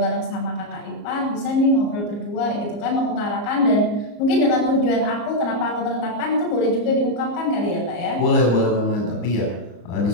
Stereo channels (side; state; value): right; late; 34 ms